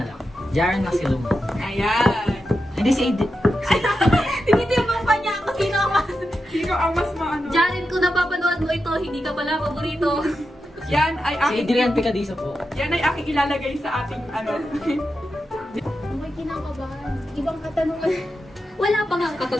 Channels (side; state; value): both; normal; correlation 0.89